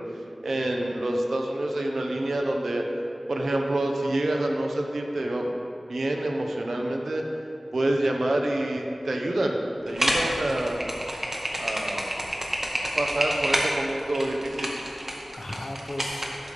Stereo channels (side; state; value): both; normal; correlation 0.97